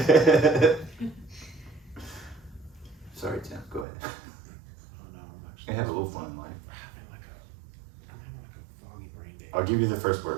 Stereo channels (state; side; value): drops out; left; at 3.9 s